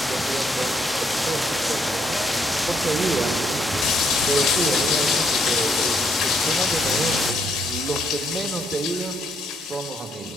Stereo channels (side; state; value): both; normal; correlation 0.72